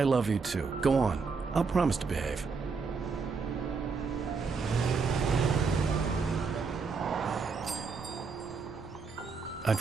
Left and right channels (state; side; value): quieter; left; 4.9 dB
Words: love you, too. Go on. I'll promise to behave. I'd